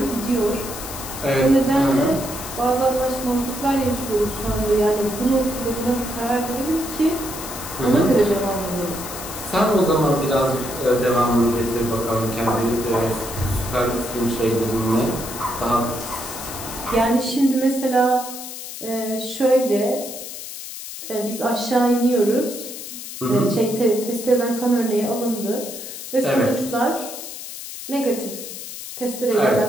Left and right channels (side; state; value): left; noise; hiss, 10 dB below the sound